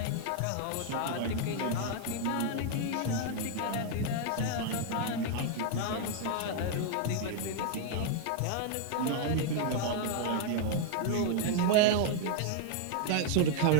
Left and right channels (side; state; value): both; different; correlation 0.00